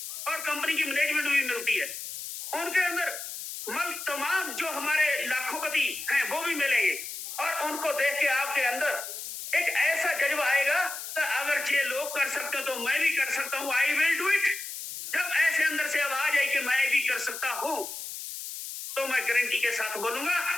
और कंपनी की मैनेजमेंट भी मिलती है। उनके अंदर तमाम जो हमारे लाखोपति हैं वो भी मिलेंगे, और उनको देख के आपके अंदर एक ऐसा जज्बा आएगा कि अगर ये लोग कर सकते हो तो मैं भी कर सकता हूं, आई विल डू इट। जब ऐसे अंदर से आवाज आई कि मैं भी कर सकता हूं, तो मैं गारंटी के साथ बोलूंगा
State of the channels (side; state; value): left; noise; hiss, 8 dB below the sound